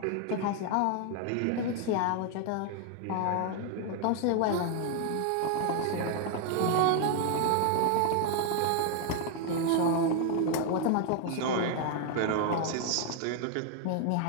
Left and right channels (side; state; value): both; different; correlation 0.00